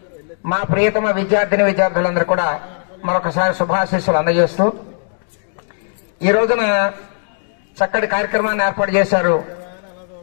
మా ప్రియతమ విద్యార్థులందరూ కూడా మరొకసారి శుభాశీస్సులు అందజేస్తూ ఈ రోజున చక్కటి కార్యక్రమాన్ని ఏర్పాటు చేశారు.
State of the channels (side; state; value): right; silent; digital silence